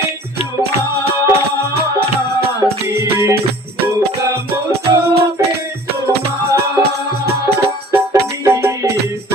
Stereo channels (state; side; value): normal; both; correlation 0.48